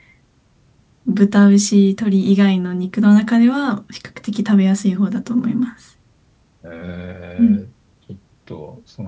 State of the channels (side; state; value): both; identical; correlation 1.00